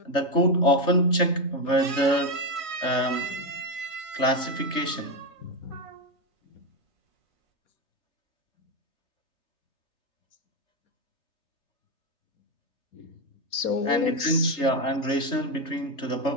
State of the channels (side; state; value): right; late; 3.3 ms